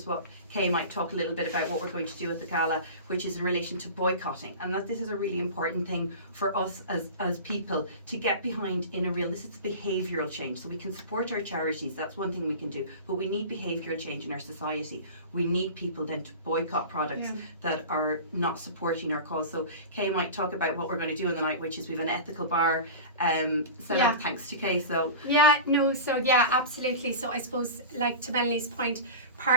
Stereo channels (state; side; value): inverted; both; correlation -0.32